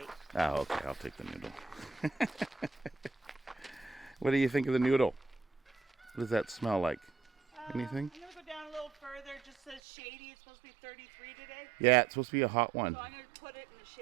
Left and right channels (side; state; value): left; drops out; at 9.8 s